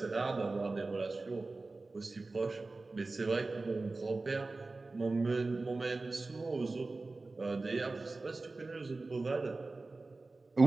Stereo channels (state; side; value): quieter; left; 3.5 dB